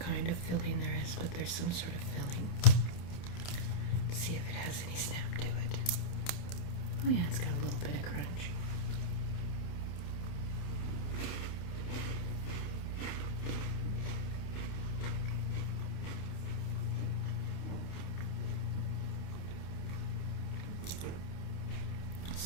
of filling there is, but there's some sort of filling. Let's see if it has any snap to it. Oh yeah, it's got a little bit of crunch.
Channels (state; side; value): late; right; 28 ms